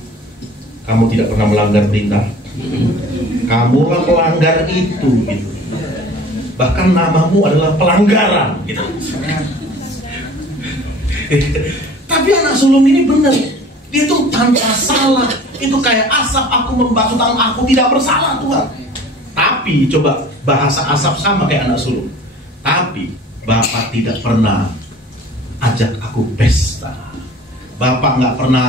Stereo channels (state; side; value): normal; both; correlation 0.46